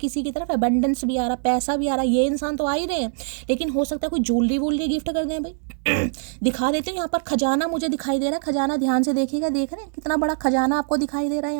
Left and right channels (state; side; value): silent; left; 63 dB below the other